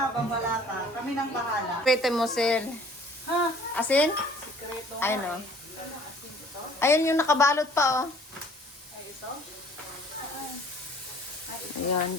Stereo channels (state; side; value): normal; both; correlation 0.53